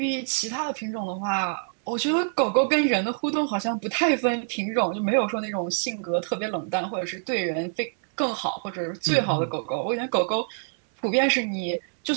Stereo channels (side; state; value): left; silent; digital silence